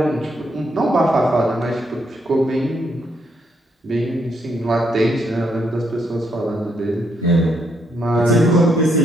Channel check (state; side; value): normal; both; correlation 0.75